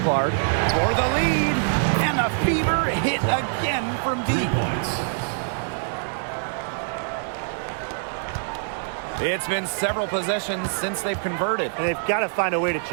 for the lead, and the Fever hit again from deep. 3 points. It's been several possessions since they've converted. And they've got to find a way to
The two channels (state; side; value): silent; left; 57 dB below the other